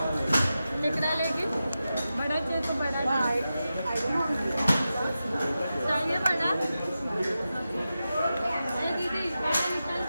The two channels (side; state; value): both; inverted; correlation -0.92